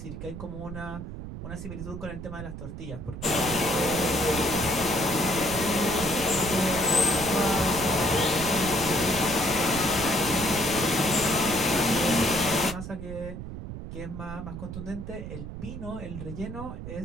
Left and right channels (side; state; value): right; noise; rumble, 9 dB below the sound